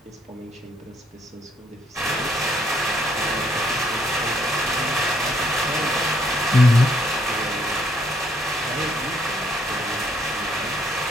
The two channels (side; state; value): both; normal; correlation 0.70